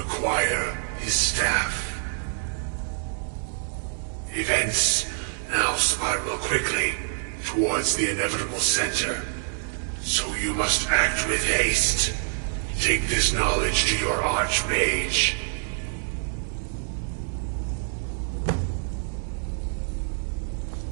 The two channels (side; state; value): left; silent; 61 dB below the other